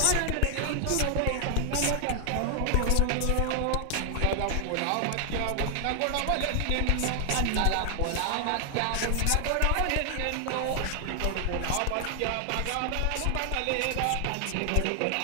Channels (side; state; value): both; different; correlation 0.00